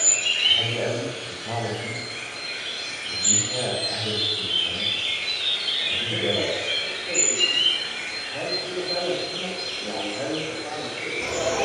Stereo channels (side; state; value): both; identical; correlation 1.00